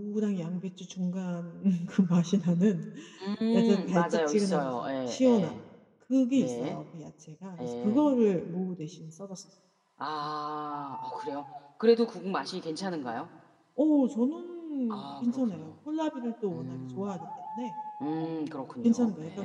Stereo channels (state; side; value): identical; both; correlation 1.00